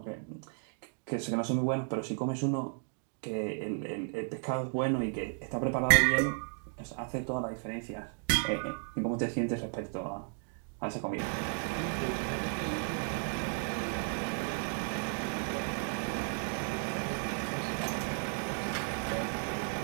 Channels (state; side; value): silent; left; 55 dB below the other